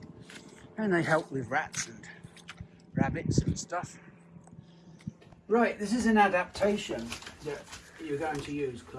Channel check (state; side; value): identical; both; correlation 1.00